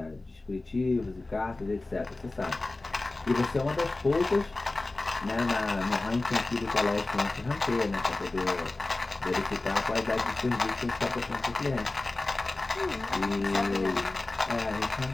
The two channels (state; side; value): quieter; right; 3.1 dB